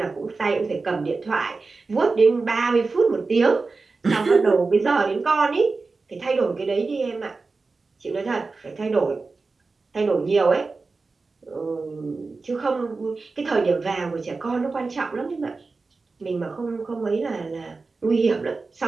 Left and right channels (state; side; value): quieter; left; 4.0 dB